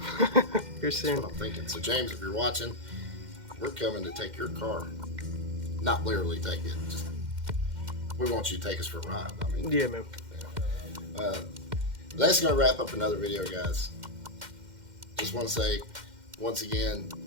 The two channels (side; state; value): left; late; 2.1 ms